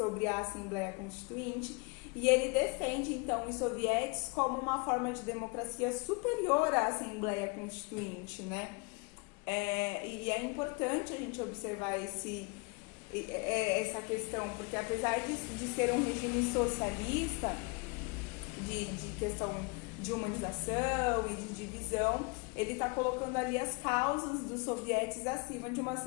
a Assembleia Constituinte e ele defende, então, os sovietes como uma forma de democracia superior à Assembleia Constituinte, né? E é importante a gente observar essa questão, porque apesar de ser um regime socialista, de questão de humanização e de divisão, ele está colocando ali as causas dos sovietes acima de uma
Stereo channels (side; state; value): right; quieter; 30.2 dB